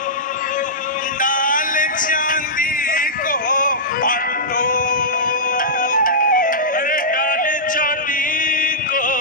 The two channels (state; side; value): normal; both; correlation -0.14